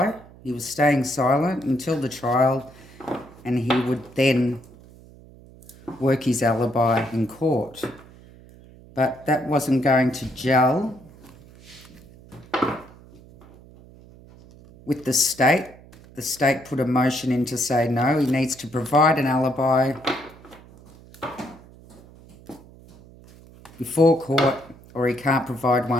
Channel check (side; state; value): right; noise; hum, 22 dB below the sound